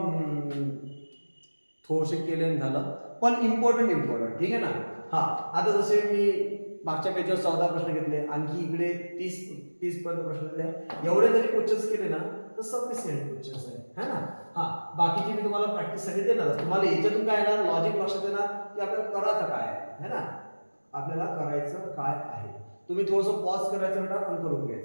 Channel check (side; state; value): both; inverted; correlation -1.00